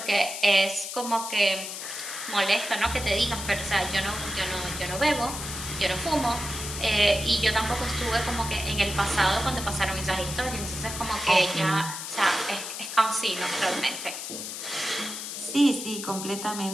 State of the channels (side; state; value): left; noise; hiss, 7 dB below the sound